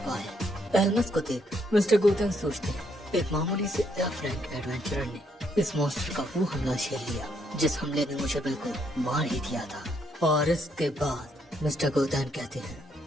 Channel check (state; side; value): normal; both; correlation 0.73